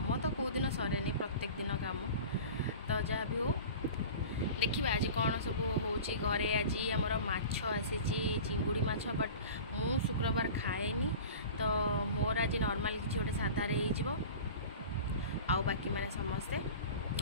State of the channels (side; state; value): both; inverted; correlation -0.37